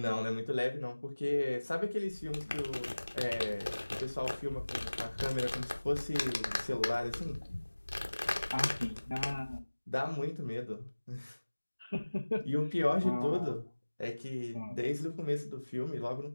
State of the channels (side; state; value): both; inverted; correlation -1.00